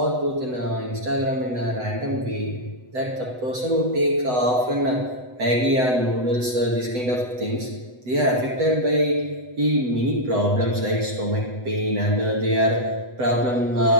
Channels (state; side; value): late; left; 8.0 ms